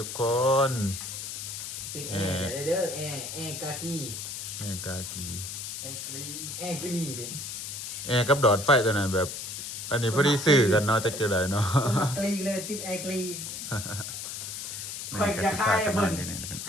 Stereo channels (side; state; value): left; noise; hiss, 7 dB below the sound